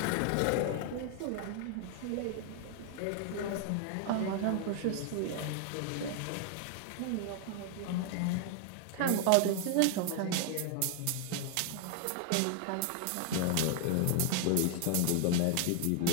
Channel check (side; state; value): both; different; correlation 0.00